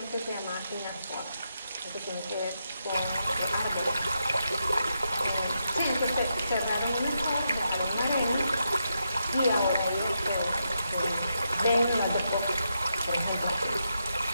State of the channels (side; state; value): both; inverted; correlation -0.83